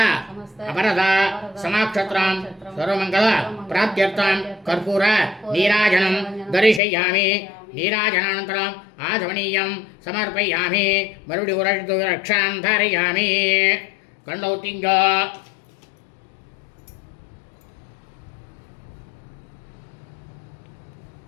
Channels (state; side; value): drops out; right; at 6.8 s